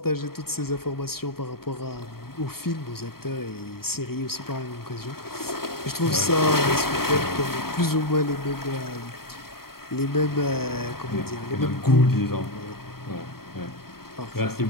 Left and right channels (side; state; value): right; late; 0.94 ms